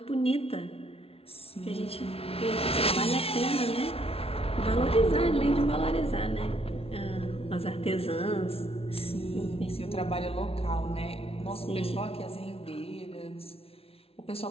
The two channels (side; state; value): right; late; 0.28 ms